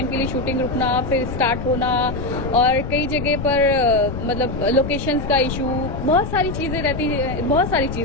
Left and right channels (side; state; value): left; noise; rumble, 6 dB below the sound